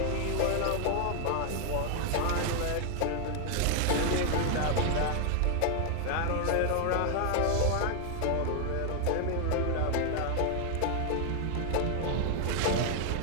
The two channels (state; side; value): different; both; correlation 0.00